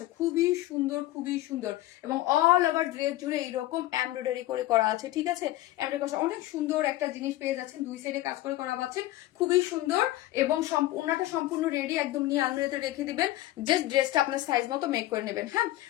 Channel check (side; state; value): right; quieter; 16.0 dB